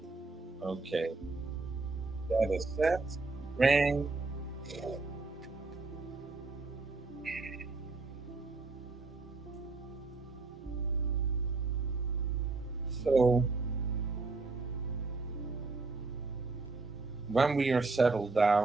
Okay, that is set. Ring. So when we are settled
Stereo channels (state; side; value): quieter; left; 3.7 dB